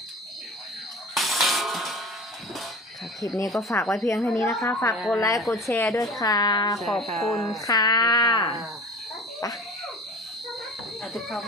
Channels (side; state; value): both; normal; correlation 0.38